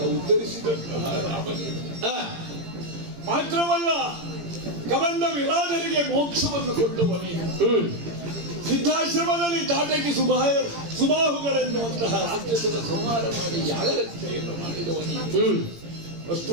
ಉದ್ಧರಿಸಿದಂತಹ ರಾಮನೇ. ಮಾತ್ರವಲ್ಲ, ಕಬಂಧ ವಿರಾಜರಿಗೆ ಮೋಕ್ಷವನ್ನು ಕೊಟ್ಟವನೇ. ಸಿದ್ಧಾಶ್ರಮದಲ್ಲಿ ತಾಟಕಿ ಸುಬಾಹುಗಳೆನ್ನುವಂತಹ ರಾಕ್ಷಸರ ಸಂಹಾರ ಮಾಡಿ ಯಾಗರಕ್ಷೆಯನ್ನು ಮಾಡಿದವನೇ. ಅಷ್ಟು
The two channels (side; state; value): left; late; 18 ms